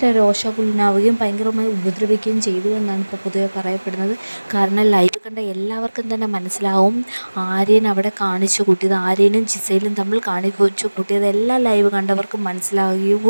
രോഷാകുലനാവുകയും ഭയങ്കരമായി ഉപദ്രവിക്കുകയും ചെയ്തു എന്നാണ് ഇപ്പോൾ പൊതുവെ പറയപ്പെടുന്നത്. കാരണം ലൈവ് കണ്ട എല്ലാവർക്കും തന്നെ മനസ്സിലാവും ആര്യൻ അവിടെ കാണിച്ചു കൂട്ടിയത്, ആര്യനും ജിസയിലും തമ്മിൽ കാണിച്ചു കൂട്ടിയത് എല്ലാ ലൈവ് കണ്ടവർക്കും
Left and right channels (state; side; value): inverted; both; correlation -1.00